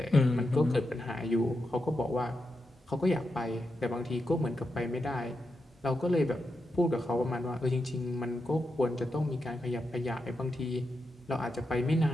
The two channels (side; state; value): both; normal; correlation 0.87